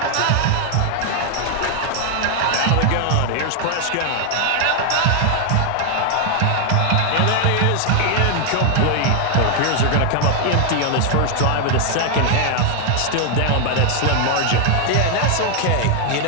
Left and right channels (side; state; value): both; different; correlation 0.00